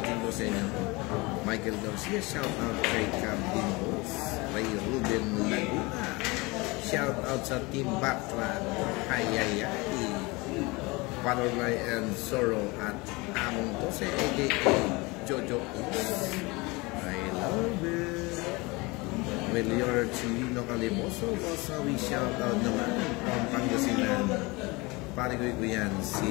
po sa inyo. Michael Garcia, shout out kay Calvin Boss. Ray Ruben Laguna, shout out sa Team Batra. Hayayay. Panorlay and Soro at Among Tose, a.k.a. Jojo Is. I love it. Melior Chilino Calimoso, we shout out naman from Pangasinan. Parigoy ko yan,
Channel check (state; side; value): quieter; right; 24.8 dB